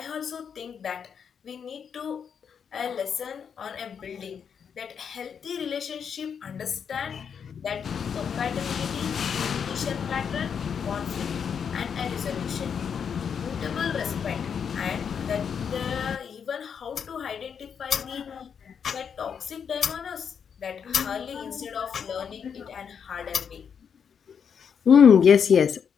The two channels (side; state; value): right; quieter; 7.1 dB